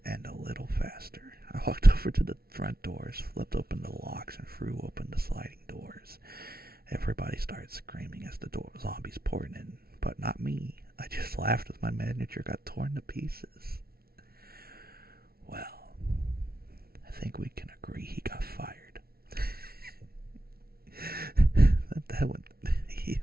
end a little faster. I walked over to the front doors, flipped open the locks, and threw open the sliding doors. Everybody started screaming as the zombies poured in, but not me. I just laughed as my manager got torn to pieces. Well, I think we can agree he got fired. that one, he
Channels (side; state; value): left; late; 0.44 ms